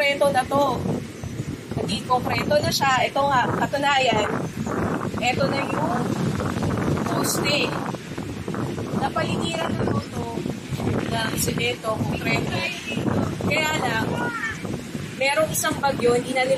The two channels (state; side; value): identical; both; correlation 1.00